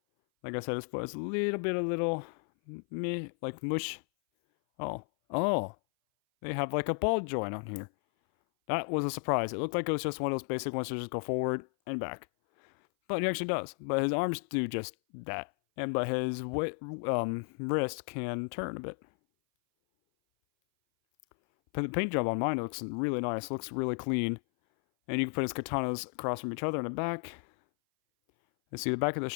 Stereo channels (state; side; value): silent; right; 56 dB below the other